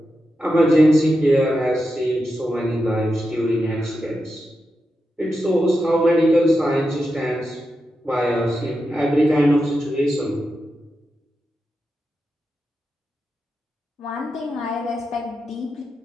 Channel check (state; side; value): normal; both; correlation 0.88